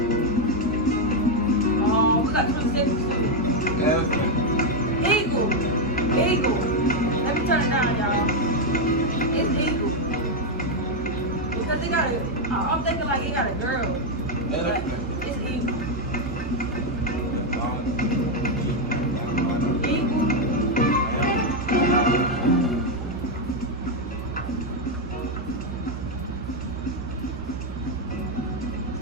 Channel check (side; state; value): both; normal; correlation 0.02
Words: Oh, we got 20 seconds too. Eagle. Eagle. Let me turn it down, y'all. It's eagle. Because it got a. I'm thinking like it got a girl. Like, it's eagle.